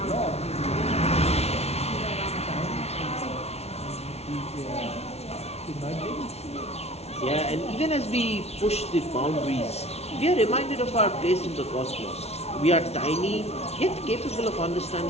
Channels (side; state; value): right; late; 0.31 ms